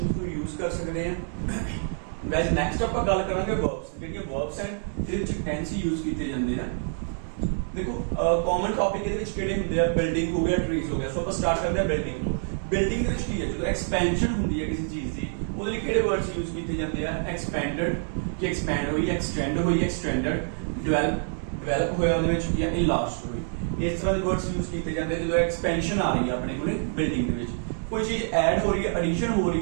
ਨੂੰ ਯੂਜ਼ ਕਰ ਸਕਦੇ ਹਾਂ। ਗਾਇਜ਼ ਨੈਕਸਟ ਆਪਾਂ ਗੱਲ ਕਰਾਂਗੇ ਵਰਬਸ। ਜਿਹੜੀਆਂ ਵਰਬਸ ਹਨ ਇਹਦੇ ਵਿੱਚ ਟੈਂਸ ਹੀ ਯੂਜ਼ ਕੀਤੇ ਜਾਂਦੇ ਆ। ਦੇਖੋ ਕਾਮਨ ਟੌਪਿਕ ਇਹਦੇ ਵਿੱਚ ਕਿਹੜੇ ਹੁੰਦੇ ਆ? ਬਿਲਡਿੰਗ ਹੋ ਗਿਆ, ਟਰੀਜ਼ ਹੋ ਗਿਆ। ਸੋ ਆਪਾਂ ਸਟਾਰਟ ਕਰਦੇ ਆ ਬਿਲਡਿੰਗ ਤੋਂ। ਬਿਲਡਿੰਗ ਦੇ ਵਿੱਚ ਕੀ ਹੈ? ਜਦੋਂ ਐਕਸਪੈਂਸ਼ਨ ਹੁੰਦੀ ਹੈ ਕਿਸੇ ਚੀਜ਼ ਦੀ ਉਹਦੇ ਲਈ ਕਿਹੜੇ ਵਰਡਸ ਯੂਜ਼ ਕੀਤੇ ਜਾਂਦੇ ਆ? ਐਕਸਪੈਂਡਡ, ਕਿ ਐਕਸਪੈਂਡ ਹੋਈ, ਐਕਸਟੈਂਡ ਹੋਈ, ਐਕਸਟੈਂਡਡ, ਡਿਵੈਲਪ ਹੋਇਆ ਉਹਦੇ ਵਿੱਚ, ਜਾਂ ਇਨਲਾਰਜਡ ਹੋਈ। ਇਸ ਤਰ੍ਹਾਂ ਦੇ ਵਰਡਸ ਯੂਜ਼ ਕੀਤੇ ਜਾਂਦੇ ਜਦੋਂ ਐਕਸਪੈਂਸ਼ਨ ਆ ਰਹੀ ਹੈ ਆਪਣੇ ਕੋਲੇ ਬਿਲਡਿੰਗ ਦੇ ਵਿੱਚ। ਕੋਈ ਚੀਜ਼ ਐਡ ਹੋ ਰਹੀ ਹੈ, ਐਡੀਸ਼ਨ ਹੋ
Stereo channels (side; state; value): left; silent; digital silence